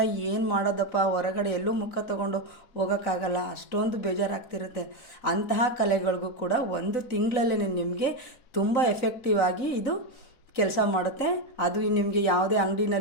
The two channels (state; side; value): late; right; 3.9 ms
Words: ಏನು ಮಾಡೋದಪ್ಪ, ಹೊರಗಡೆ ಎಲ್ಲೂ ಮುಖ ತಗೊಂಡು ಹೋಗೋಕ್ಕಾಗಲ್ಲ, ಅಷ್ಟೊಂದು ಬೇಜಾರಾಗ್ತಿರುತ್ತೆ. ಅಂತಹ ಕಲೆಗಳಿಗೂ ಕೂಡ ಒಂದು ತಿಂಗಳಲ್ಲೇ ನಿಮಗೆ ತುಂಬ ಎಫೆಕ್ಟಿವ್ ಆಗಿ ಇದು ಕೆಲಸ ಮಾಡುತ್ತೆ. ಅದು ನಿಮಗೆ ಯಾವುದೇ